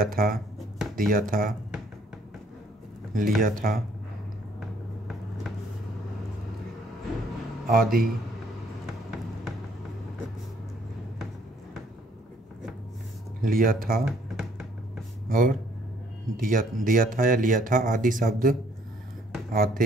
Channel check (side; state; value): both; normal; correlation 0.63